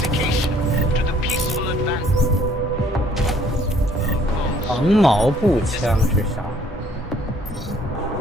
to the peaceful advance. 长矛步枪是啥？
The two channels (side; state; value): both; normal; correlation 0.60